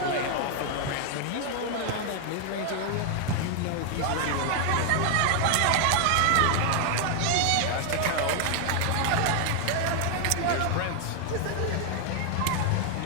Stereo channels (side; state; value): both; different; correlation 0.00